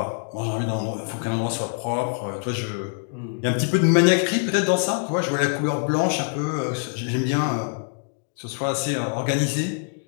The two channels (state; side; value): silent; right; digital silence